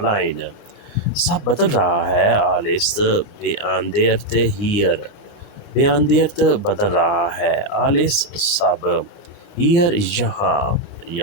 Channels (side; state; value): right; late; 29 ms